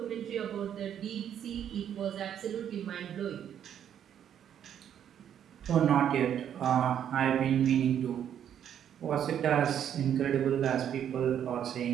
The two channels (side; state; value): left; quieter; 9.5 dB